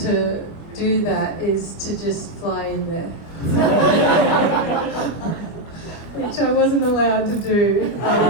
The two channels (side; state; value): right; late; 25 ms